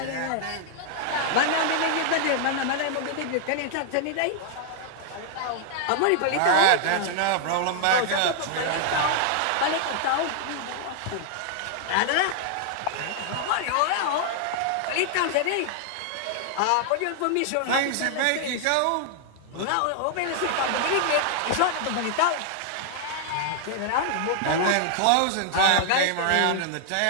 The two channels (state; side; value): different; both; correlation 0.00